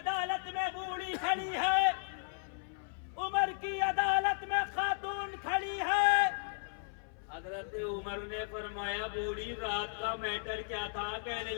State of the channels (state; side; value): silent; right; 54 dB below the other